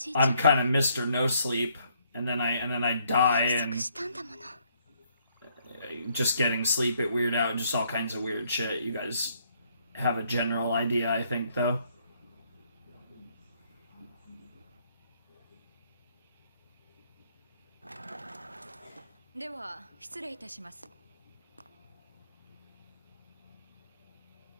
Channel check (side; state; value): both; inverted; correlation -0.69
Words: いちゃん I'm kind of Mr. No Sleep, and then I die, 約 and 束したんだもの。 just getting sleep it weird out, just all kinds of weird shit. You guys have a general idea, I think, though. は失礼いたします。